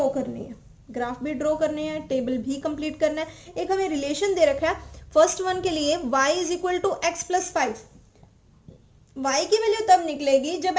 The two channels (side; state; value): both; identical; correlation 1.00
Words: करने हैं, ग्राफ भी ड्रॉ करने हैं, टेबल भी कंप्लीट करना है। एक हमें रिलेशन दे रखा है फर्स्ट वन के लिए, y is equal to x plus 5। y की वैल्यू तब निकलेगी जब